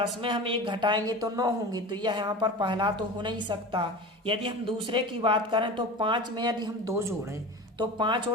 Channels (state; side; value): normal; both; correlation 0.32